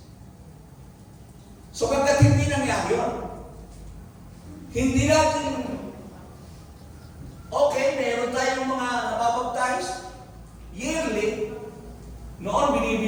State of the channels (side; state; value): both; identical; correlation 1.00